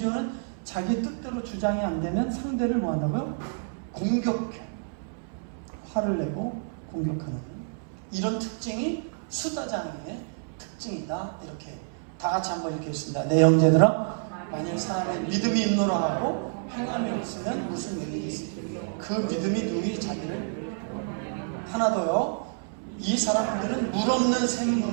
자기 뜻대로 주장이 안 되면 상대를 뭐 한다고요? 공격해. 화를 내고 공격하는 이런 특징이 수다장의 특징이다. 이렇게 다 같이 한번 이렇게 했습니다. 내 형제들아, 만일 사람의 믿음이 있노라하고 행함이 없으면 무슨 일이 있습니까? 그 믿음이 누구의 자기를 하나 더요. 이 사람들은 물 없는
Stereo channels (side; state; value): left; silent; 59 dB below the other